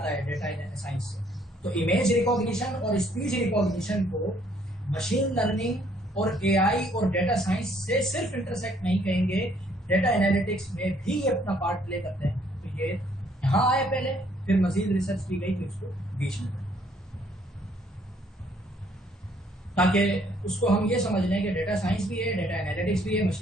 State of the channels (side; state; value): both; normal; correlation 0.65